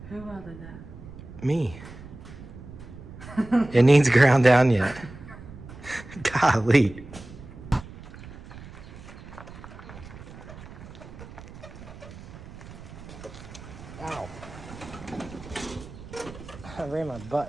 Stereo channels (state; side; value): noise; right; rumble, 15 dB below the sound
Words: Who welded that? Me. It needs ground down yet. Golly. Ow. I ran my